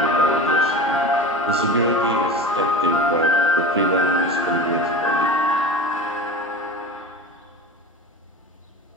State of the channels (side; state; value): both; normal; correlation 0.31